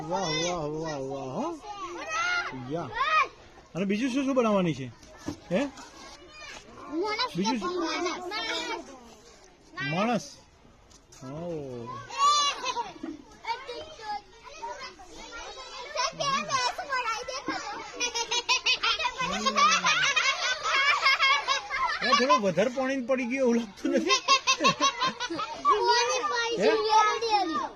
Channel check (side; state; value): both; identical; correlation 1.00